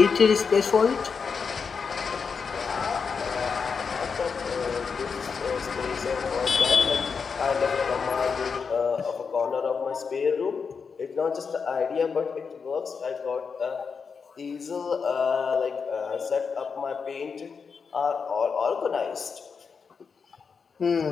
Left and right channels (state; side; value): quieter; right; 5.6 dB